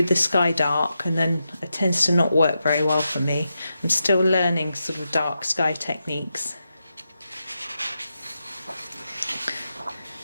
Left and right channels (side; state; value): both; inverted; correlation -0.87